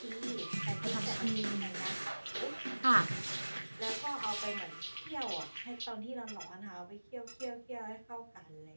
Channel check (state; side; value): inverted; both; correlation -1.00